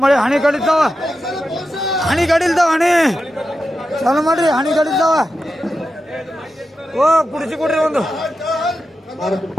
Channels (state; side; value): normal; both; correlation 0.90